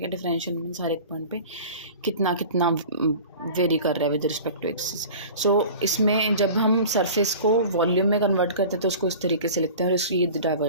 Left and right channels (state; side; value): inverted; both; correlation -0.39